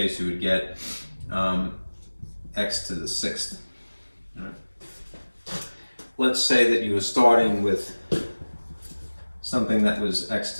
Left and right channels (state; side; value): inverted; both; correlation -1.00